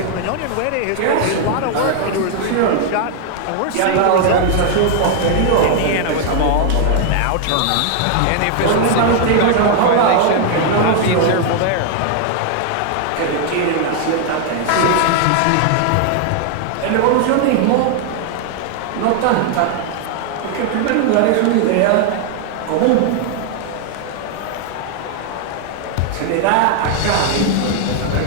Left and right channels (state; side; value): different; both; correlation 0.00